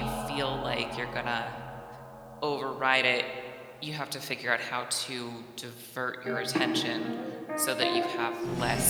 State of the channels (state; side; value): identical; both; correlation 1.00